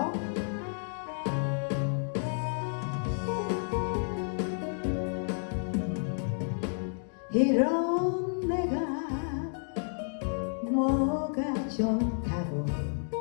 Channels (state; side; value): silent; right; digital silence